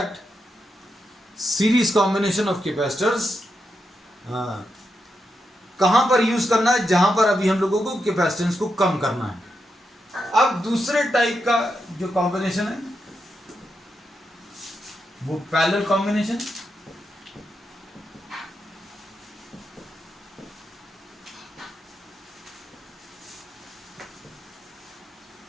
series combination of capacitors कहां पर यूज करना है, जहां पर अभी हम लोगों को कैपेसिटेंस को कम करना है। अब दूसरे टाइप का जो कॉम्बिनेशन है वो पैरेलल कॉम्बिनेशन।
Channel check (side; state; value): both; normal; correlation 0.85